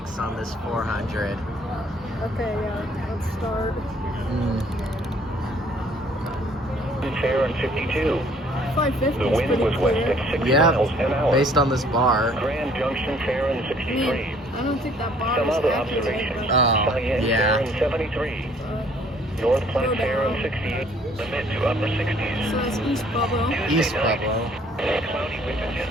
on this 400. Okay, yeah, let's start. Fair and 52. 550. The wind was west at 6 miles an hour. Based on this bar. Grand Junction fair and 63. I don't think that bar Some is other accurate, observations. Oh, Cheyenne yeah. fair and 73. North Platte fair and 68. The mid to upper 60s. So that's East Pueblo. East Pueblo. Cloudy with a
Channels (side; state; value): both; normal; correlation 0.60